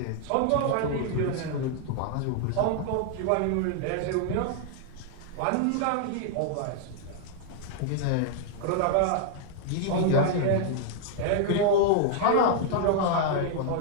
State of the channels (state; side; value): different; both; correlation 0.00